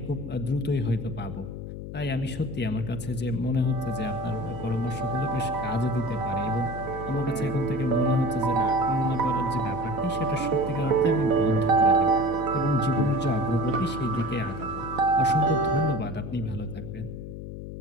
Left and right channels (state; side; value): noise; left; hum, 9 dB below the sound